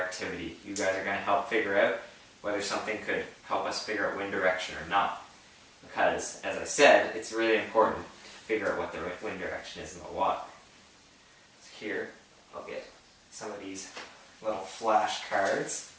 You guys are going to help figure out whether something could help us figure out wind direction or not. Because, as I said, it's really important to figure out what the wind direction is in the water. So here, I'll get some of these little flashcards,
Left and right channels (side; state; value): both; identical; correlation 1.00